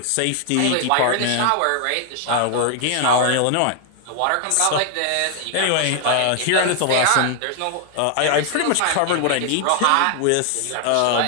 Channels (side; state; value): both; different; correlation 0.00